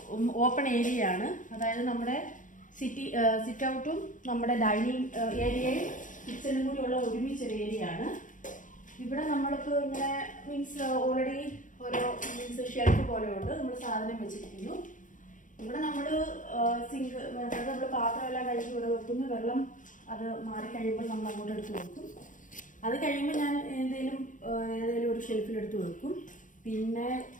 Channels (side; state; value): right; late; 0.38 ms